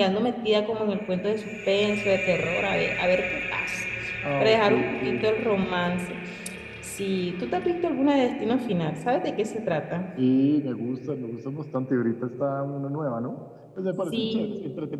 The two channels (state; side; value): identical; both; correlation 1.00